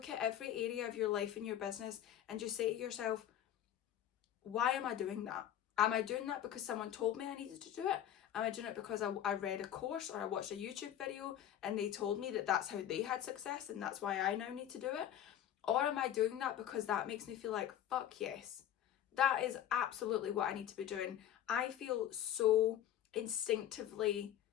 at every area of your life and your business, and just say to yourself, why am I doing that? Am I doing that because someone told me I needed to do it? Am I doing it because I read a course or I watched a YouTube video and they told me that that's how they had success and that's why I now need to do it? Or am I doing that because that makes me feel like, fuck yes, that is absolutely what I need to be doing. I feel so instinctively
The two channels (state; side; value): quieter; right; 11.0 dB